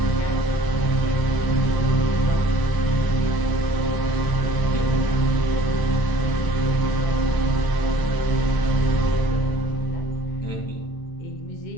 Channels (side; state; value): right; late; 1.0 ms